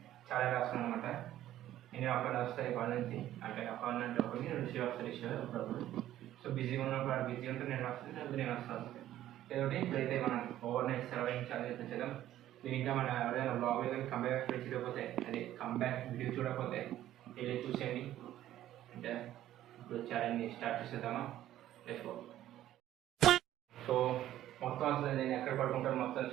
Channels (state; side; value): quieter; left; 13.0 dB